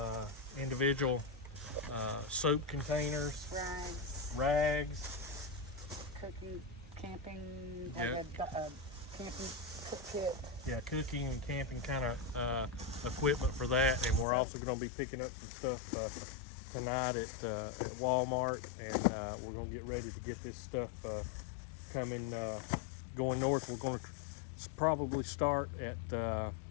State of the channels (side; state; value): right; drops out; at 14.2 s